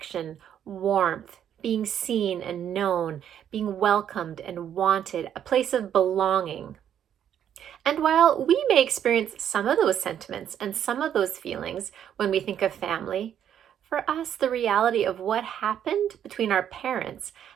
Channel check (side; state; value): left; quieter; 9.6 dB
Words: warmth, being seen and known, being welcomed and wanted, a place of belonging. And while we may experience some of those sentiments and some of those feelings when we think of family, for us, the reality of what happened between our parents